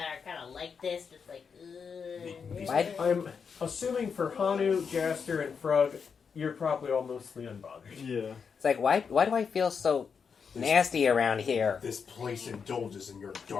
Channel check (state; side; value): quieter; right; 6.1 dB